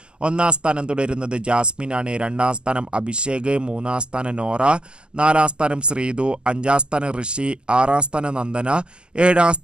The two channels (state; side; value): late; left; 0.048 ms